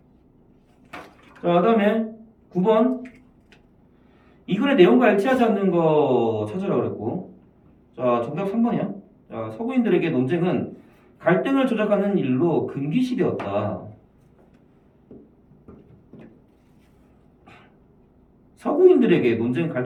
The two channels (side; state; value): both; identical; correlation 1.00